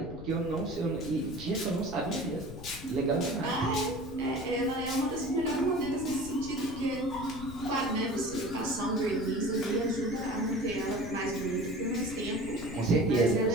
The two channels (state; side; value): noise; left; rumble, 13 dB below the sound